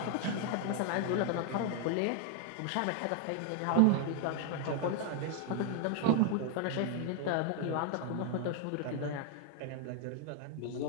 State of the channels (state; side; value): different; both; correlation 0.00